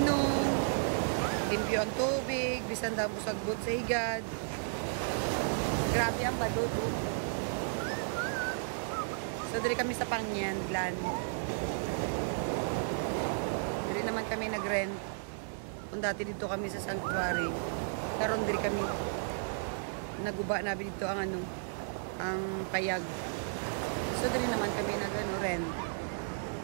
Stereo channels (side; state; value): left; silent; digital silence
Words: limpyo ang tubig, bisan damo sagbot sa higad. Grabe ang balod, oh. So diri kami sa Pangyan, Glan. Diri naman kami nag-rent. Kung dati dito kami sa Sanctuary, karon diri kami naguba na dito ang ano, ang payag. So diri naman kami nag ano, rent.